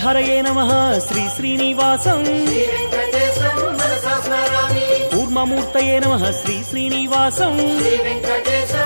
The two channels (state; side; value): inverted; both; correlation -1.00